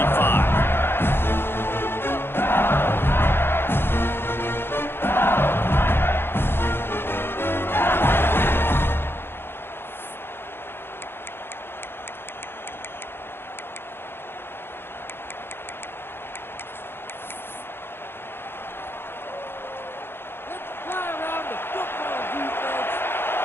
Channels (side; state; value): right; late; 0.11 ms